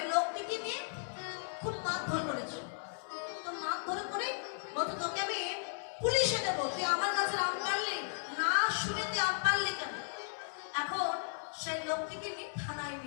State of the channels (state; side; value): silent; right; 54 dB below the other